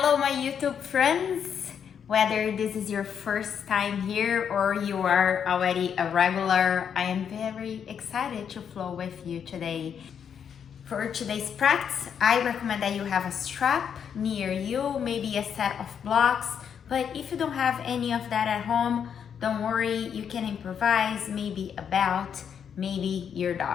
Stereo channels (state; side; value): quieter; right; 7.8 dB